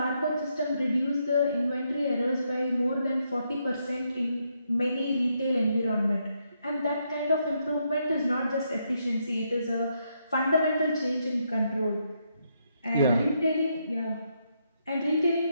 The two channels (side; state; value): both; inverted; correlation -0.78